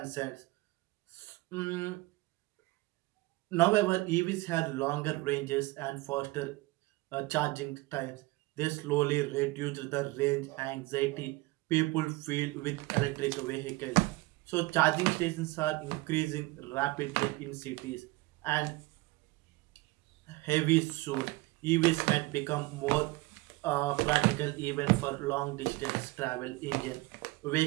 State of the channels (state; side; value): quieter; left; 21.7 dB